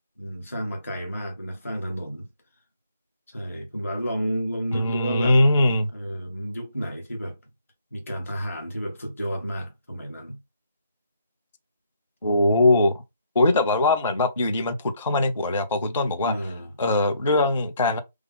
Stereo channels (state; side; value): inverted; both; correlation -0.71